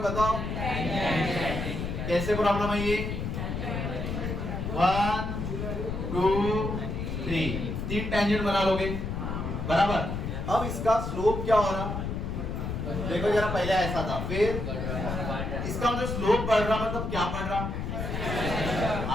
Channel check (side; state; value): left; noise; rumble, 3 dB below the sound